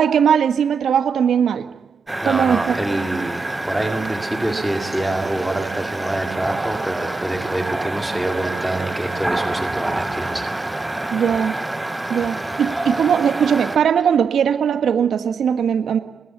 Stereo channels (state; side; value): quieter; left; 5.0 dB